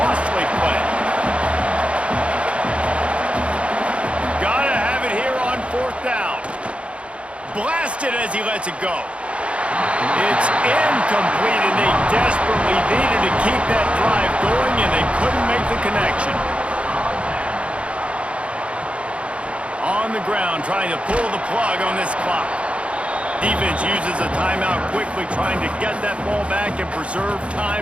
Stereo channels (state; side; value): late; left; 0.060 ms